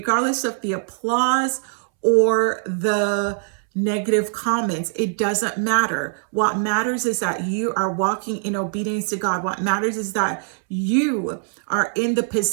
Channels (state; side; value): silent; left; 64 dB below the other